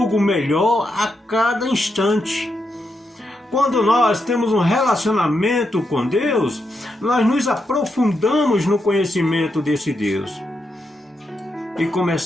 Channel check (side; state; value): both; normal; correlation 0.83